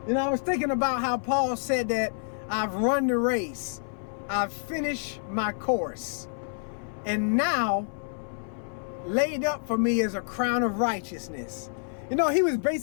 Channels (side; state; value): right; silent; 59 dB below the other